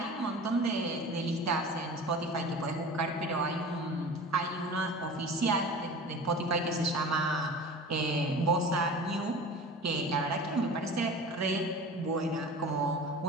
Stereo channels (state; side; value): normal; both; correlation 0.37